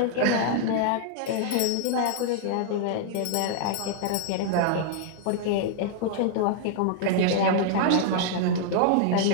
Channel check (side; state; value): both; different; correlation -0.01